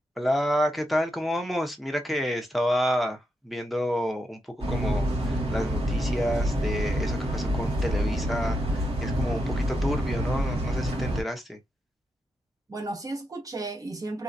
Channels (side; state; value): both; normal; correlation 0.84